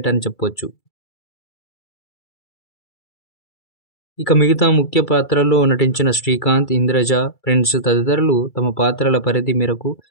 అని చెప్పొచ్చు. ఇక మిగతా ముఖ్య పాత్రల్లో నటించిన శ్రీకాంత్, ఇంద్రజ, ప్రిన్స్ తదితరులు తమ పాత్రల పరిధి మేరకు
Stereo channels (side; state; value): right; late; 2.3 ms